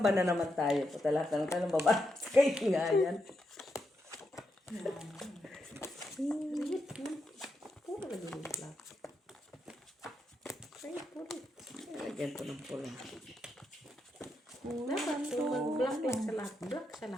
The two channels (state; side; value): normal; both; correlation 0.83